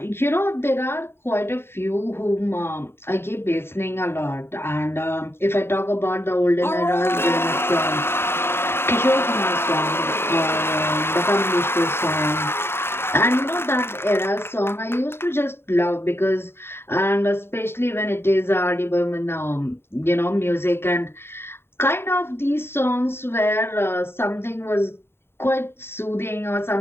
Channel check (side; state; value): right; late; 0.11 ms